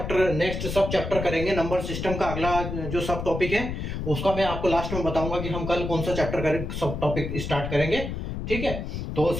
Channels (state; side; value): noise; left; rumble, 5 dB below the sound